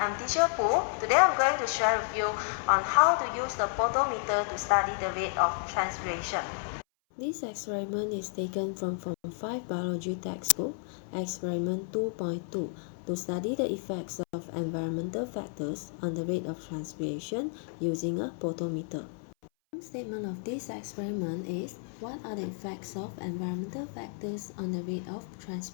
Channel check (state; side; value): silent; right; 57 dB below the other